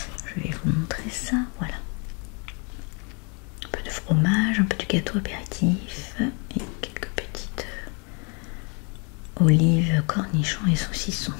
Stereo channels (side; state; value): right; quieter; 35.0 dB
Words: vais vous montrer ça, voilà. Un peu de fromage, un peu de gâteau apéritif et quelques petites olives, cornichons et saucissons.